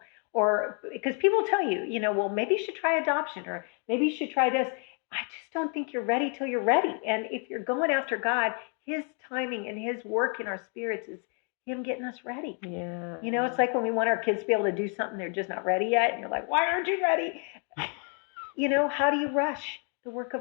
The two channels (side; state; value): right; quieter; 40.0 dB